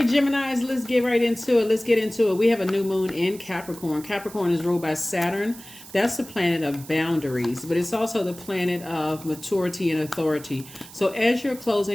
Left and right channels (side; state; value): right; noise; hiss, 18 dB below the sound